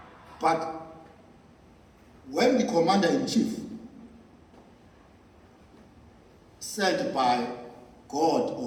But when the commander-in-chief sent by God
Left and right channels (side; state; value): both; identical; correlation 1.00